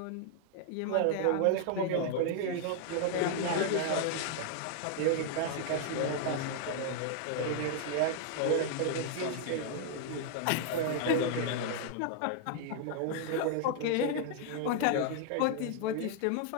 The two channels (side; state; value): both; different; correlation 0.00